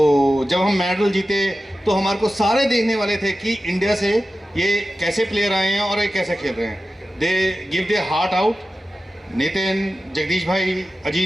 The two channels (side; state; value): both; normal; correlation 0.93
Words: जब हम मेडल जीते तो हमारे को सारे देखने वाले थे कि इंडिया से ये कैसे प्लेयर आए हैं और ये कैसे खेल रहे हैं। They give they heart out. Nitin, Jagdish भाई,